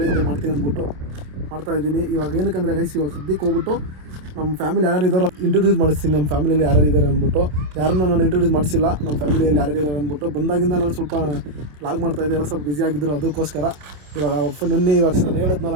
ಮಾಡ್ತೀನಿ ಅಂದ್ಬಿಟ್ಟು ಮಾಡ್ತಾಯಿದ್ದೀನಿ. ಇವಾಗ ಏನಕ್ಕಂದರೆ ಗೈಸ್, ಇವಾಗ ಸದ್ಯಕ್ಕೆ ಹೋಗ್ಬಿಟ್ಟು ನಮ್ಮ ಫ್ಯಾಮಿಲಿ ಯಾರು ಇದ್ದಾರೋ ಇಂಟ್ರೊಡ್ಯೂಸ್ ಮಾಡಿಸ್ತೀನಿ. ನಮ್ಮ ಫ್ಯಾಮಿಲಿಯಲ್ಲಿ ಯಾರು ಇದ್ದಾರೆ ಅಂದ್ಬಿಟ್ಟು. ಯಾರನ್ನ ನಾನು ಇಂಟ್ರೊಡ್ಯೂಸ್ ಮಾಡಿಸಿಲ್ಲ, ನಮ್ಮ ಫ್ಯಾಮಿಲಿಯಲ್ಲಿ ಯಾರು ಇದ್ದಾರೆ ಅಂದ್ಬಿಟ್ಟು. ಬಂದಾಗಿಂದ ನಾನು ಸ್ವಲ್ಪ ಲಾಗ್ ಮಾಡ್ತಾಯಿದ್ದೆ, ಎಲ್ಲ ಸ್ವಲ್ಪ ಬ್ಯುಸಿ ಆಗಿದ್ದರು. ಅದಕ್ಕೋಸ್ಕರ ಇವಾಗ ನಿನ್ನೆ ಇವಾಗ ನಾನು ಹೇಳಿದ್ನಲ್ಲ,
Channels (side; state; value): left; late; 27 ms